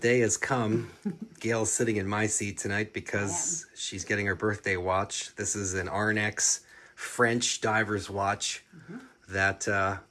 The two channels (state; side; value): identical; both; correlation 1.00